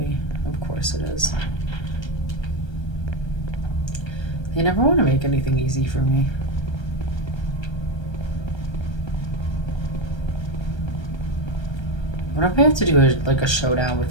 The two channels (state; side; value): late; right; 1.3 ms